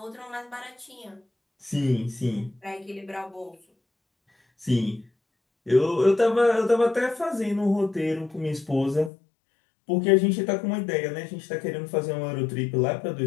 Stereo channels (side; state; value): right; drops out; at 9.1 s